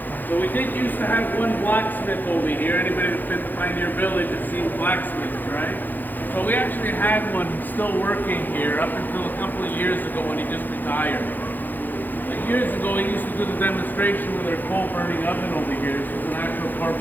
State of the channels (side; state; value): right; late; 0.087 ms